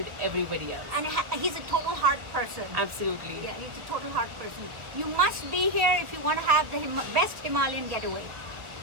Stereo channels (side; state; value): left; late; 1.4 ms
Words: everybody else. And he's a total heart person. Absolutely. Yeah, he's a total heart person. You must be here if you want to have the best Himalayan getaway.